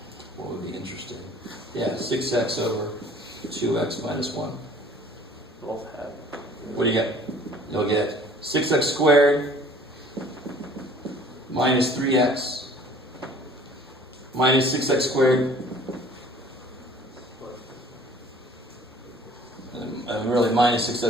What would be interesting? Yeah, 6x over 2x minus 1. Both have. What do you get? You'll get 6x squared minus 3x minus 6x squared. And really minus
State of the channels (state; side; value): normal; both; correlation 0.51